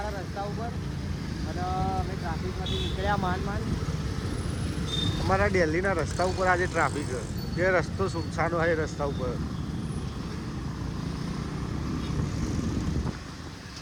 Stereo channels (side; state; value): both; identical; correlation 1.00